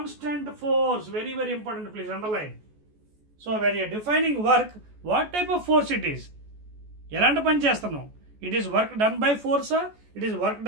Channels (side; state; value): left; late; 14 ms